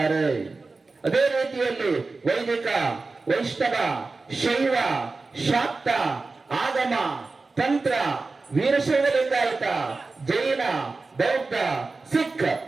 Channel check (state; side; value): quieter; left; 3.8 dB